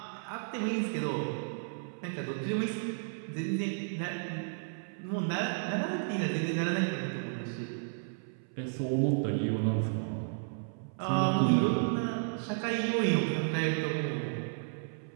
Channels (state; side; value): silent; left; 56 dB below the other